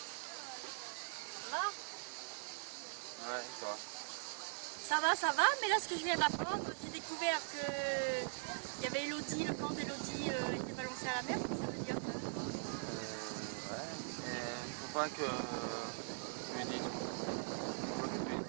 Ah. Ouais, toi. Ça va, mais là ce que je viens d'apprendre, j'ai découvert que il y avait Elodie, le camp d'Elodie était balancé à la mer, qu'est-ce que ça veut dire ça? Ouais, et faut pas que tu lui dises. Faut pas que tu lui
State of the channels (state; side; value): silent; left; digital silence